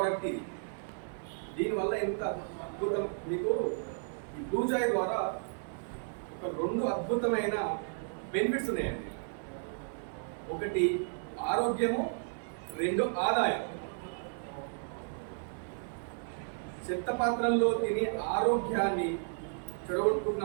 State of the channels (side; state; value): left; silent; 55 dB below the other